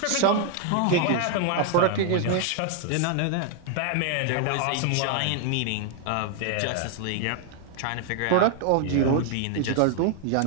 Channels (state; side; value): different; both; correlation 0.00